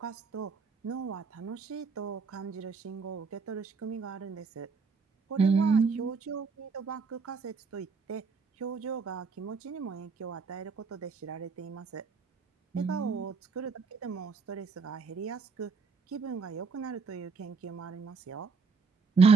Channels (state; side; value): quieter; left; 4.8 dB